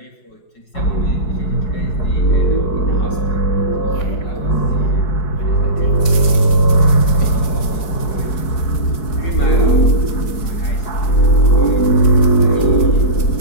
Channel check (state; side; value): late; right; 5.0 ms